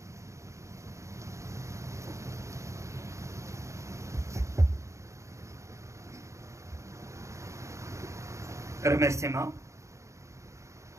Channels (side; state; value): left; late; 0.14 ms